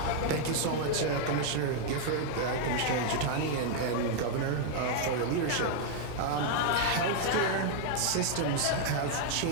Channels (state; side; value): different; both; correlation 0.00